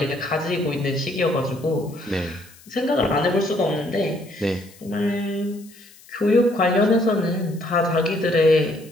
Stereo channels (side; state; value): left; noise; hiss, 24 dB below the sound